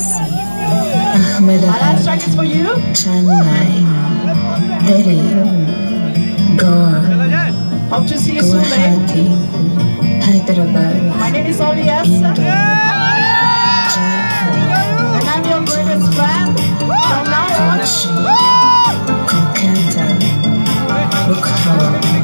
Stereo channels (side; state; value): both; inverted; correlation -1.00